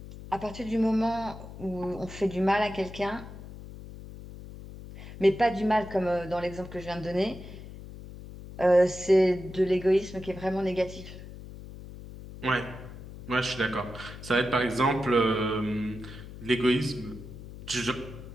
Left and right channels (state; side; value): noise; left; hum, 14 dB below the sound